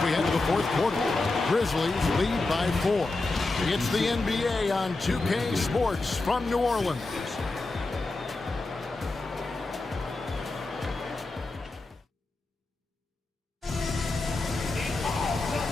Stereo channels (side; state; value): right; quieter; 3.2 dB